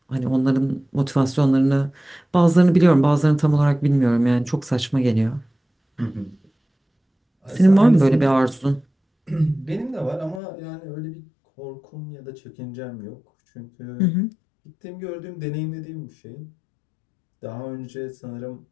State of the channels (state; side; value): drops out; right; at 10.4 s